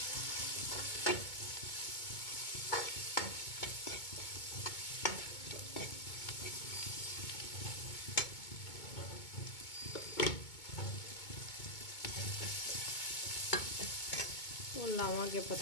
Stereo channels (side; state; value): right; late; 2.2 ms